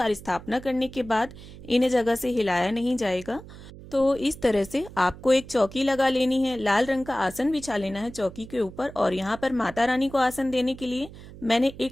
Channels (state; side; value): noise; right; hum, 16 dB below the sound